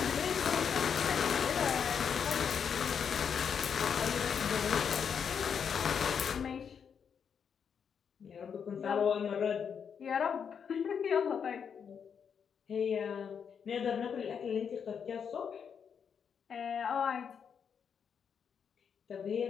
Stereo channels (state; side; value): quieter; right; 7.1 dB